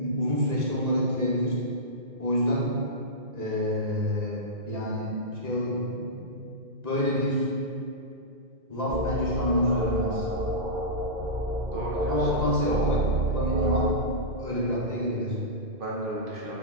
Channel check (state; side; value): late; left; 1.9 ms